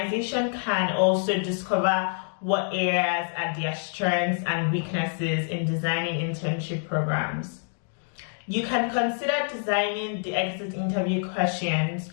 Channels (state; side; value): silent; right; 59 dB below the other